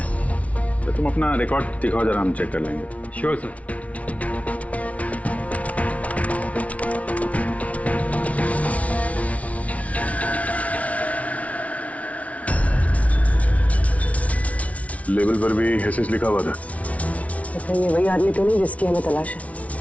तो तुम अपना रिकॉर्ड दिखाओ जरा, हम चेक कर लेंगे। Sure sir. लेबल पर भी एसएस लिखा हुआ था। अच्छा, ये वही आदमी तो नहीं जिसकी हमें तलाश है?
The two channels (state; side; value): late; right; 0.066 ms